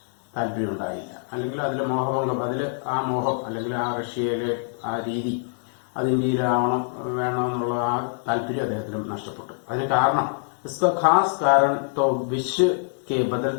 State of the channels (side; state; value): right; silent; digital silence